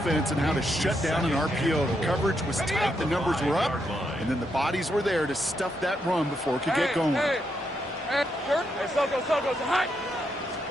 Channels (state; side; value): normal; both; correlation 0.80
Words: and how to shut down an RPO. The coverage was tight, the numbers were up, and then the bodies were there to stuff that run before it could get going. Hey, Soko, hi.